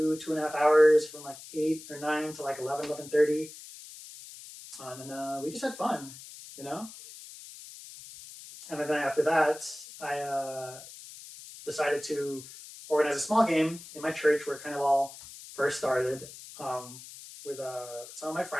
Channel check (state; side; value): noise; left; hiss, 15 dB below the sound